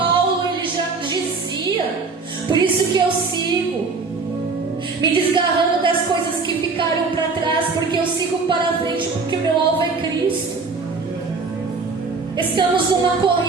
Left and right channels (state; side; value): quieter; left; 4.3 dB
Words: ele já dizia, por isso que eu sigo, me desgarrando das coisas que ficaram para trás, porque eu sigo para frente, porque o meu alvo é Cristo. Estamos numa